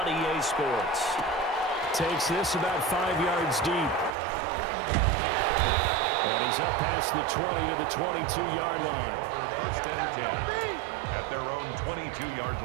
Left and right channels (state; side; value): drops out; left; at 4.2 s